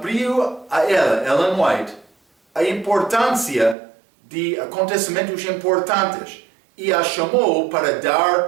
a ela, Ellen White, a importância de acontecimentos importantes e a chamou para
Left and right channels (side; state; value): left; drops out; at 3.8 s